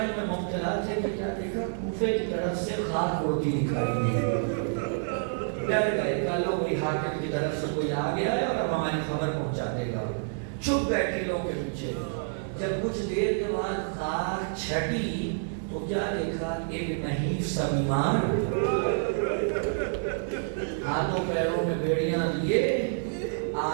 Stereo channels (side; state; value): left; silent; 59 dB below the other